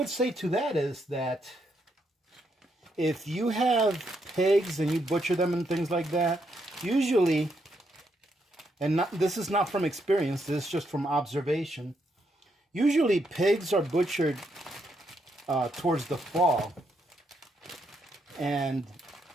say to that is that if you have pigs and you butcher them and things like that, usually, and this is not from experience, this is just from observation, usually pigs are butchered towards the fall, and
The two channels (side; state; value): both; normal; correlation 0.77